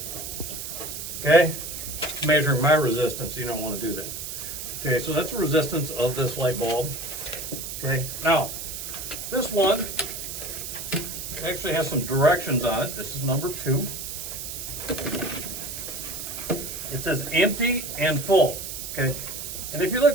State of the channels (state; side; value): noise; right; hiss, 7 dB below the sound